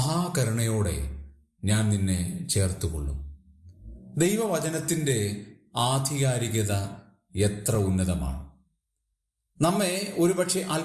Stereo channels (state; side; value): identical; both; correlation 1.00